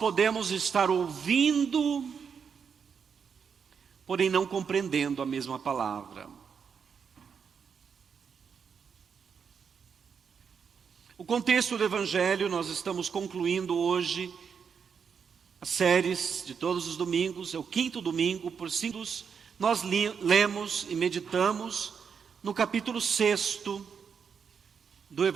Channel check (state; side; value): quieter; left; 6.6 dB